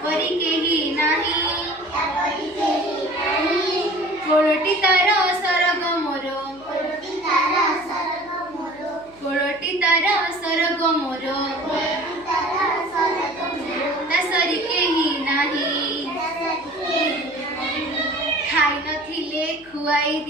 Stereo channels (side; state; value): left; noise; hum, 25 dB below the sound